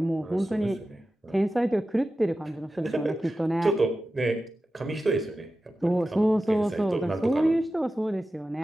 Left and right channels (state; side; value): normal; both; correlation 0.93